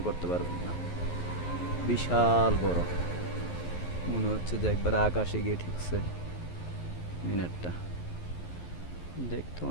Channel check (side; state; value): right; late; 11 ms